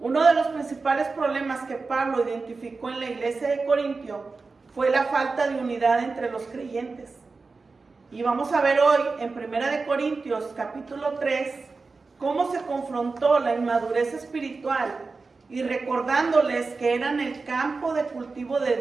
de los principales problemas que Pablo identificó en la iglesia de Corintio fue la falta de unidad entre los creyentes. Y vamos a ver hoy en 1 de Corintios capítulo 3 cómo se confrontó la inmadurez espiritual y recordándoles que eran el campo de cultivo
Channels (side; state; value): left; quieter; 4.1 dB